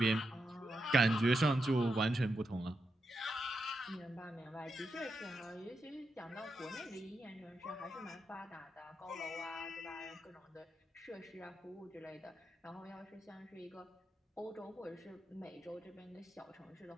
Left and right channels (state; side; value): normal; both; correlation 0.85